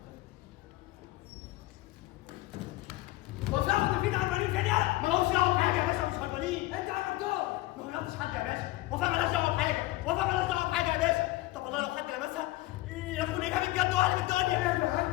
وفاء وتفيد هربانين كده يلا. مالهمش دعوه بحاجه يا باشا، مش هربانين. انت عملتهم. ما غيرتش حد يا باشا. وفاء مالهاش دعوه بحاجه، وفاء مالهاش دعوه بحاجه يا باشا. طب والله لو حد لمسها يكون اجابه بجد وقلب الدنيا.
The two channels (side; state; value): right; quieter; 18.4 dB